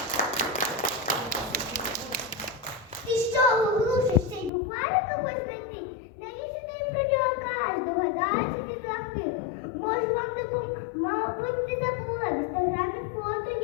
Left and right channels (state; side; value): drops out; right; at 4.5 s